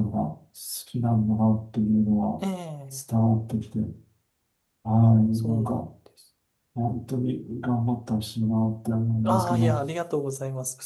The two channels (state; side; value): identical; both; correlation 1.00